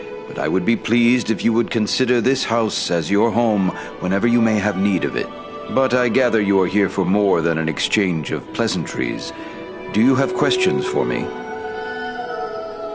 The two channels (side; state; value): both; identical; correlation 1.00